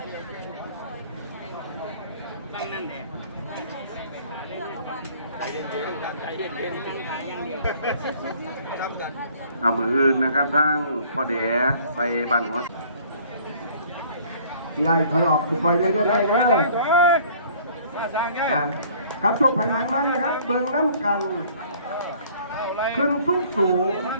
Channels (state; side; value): inverted; both; correlation -0.55